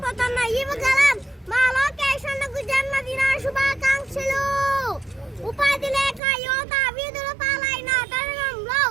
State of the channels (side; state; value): left; drops out; at 6.2 s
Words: యువగలం మా లోకేష్ అన్నకు జన్మదిన శుభాకాంక్షలు. ఉపాధి లేక యువత వీధుల పాలైన తరుణంలో,